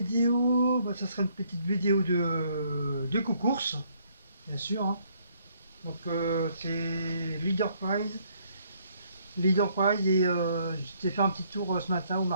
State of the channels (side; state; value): both; inverted; correlation -0.67